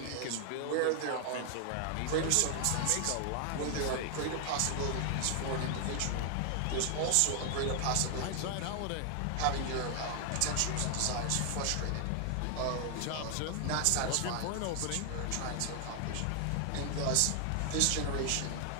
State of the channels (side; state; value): both; different; correlation 0.00